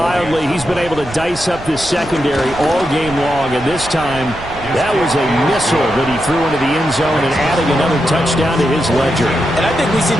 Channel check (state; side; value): noise; right; rumble, 15 dB below the sound